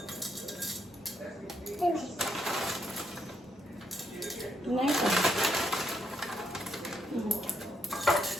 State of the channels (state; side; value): normal; both; correlation 0.76